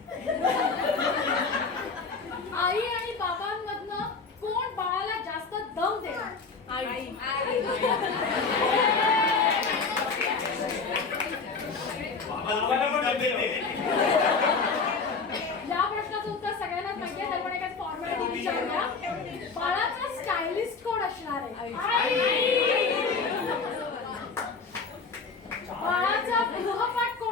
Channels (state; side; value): quieter; right; 4.7 dB